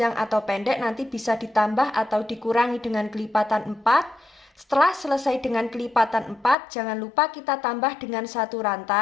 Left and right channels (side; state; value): right; drops out; at 6.6 s